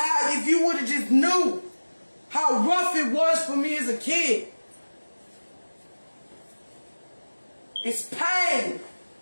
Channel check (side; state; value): both; inverted; correlation -1.00